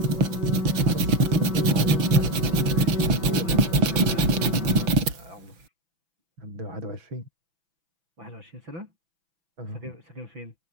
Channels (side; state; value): left; late; 6.0 ms